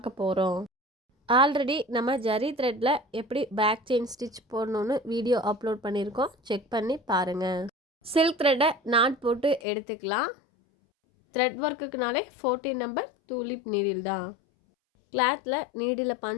போகிறோம். ஆல்ரெடி நம்ம ஜரி த்ரெட்டில் எப்படி பேக் செயின் ஸ்டிச் போடணுன்னு வீடியோ அப்லோட் பண்ணியிருக்கோம், செக் பண்ணி பாருங்கள். சில்க் த்ரெட்டை நாட் போட்டு எடுத்துக்கலாம். த்ரெட் ஒர்க்குக்குனாலே 14 நம்பர் டூலிப் நீடில் தான். கிளாத்தில் நீடில்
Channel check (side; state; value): right; drops out; at 9.6 s